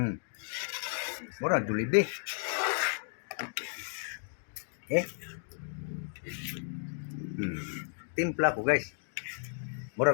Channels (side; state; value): right; silent; digital silence